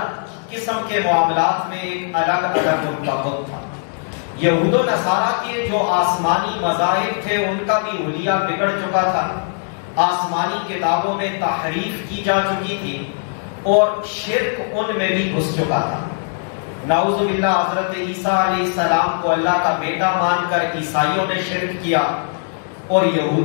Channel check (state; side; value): silent; right; 66 dB below the other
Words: قسم کے معاملات میں ایک الگ الگ ان کا بت تھا۔ یہود و نصارہ کے جو آسمانی مذاہب تھے ان کا بھی حلیہ بگڑ چکا تھا، آسمانی کتابوں میں تحریف کی جا چکی تھی اور شرک ان میں بھی گھس چکا تھا۔ نعوذ باللہ حضرت عیسیٰ علیہ السلام کو اللہ کا بیٹا مان کر عیسائیوں نے شرک کیا اور